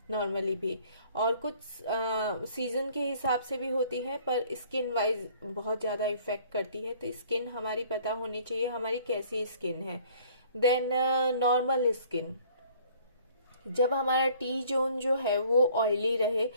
नॉर्मली भी। और कुछ सीजन के हिसाब से भी होती है, पर स्किन वाइज बहुत ज़्यादा इफेक्ट करती है। तो स्किन हमारी पता होनी चाहिए हमारी कैसी स्किन है। देन नॉर्मल स्किन, जब हमारा टी जोन जो है वो ऑयली रहे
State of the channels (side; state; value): both; inverted; correlation -0.56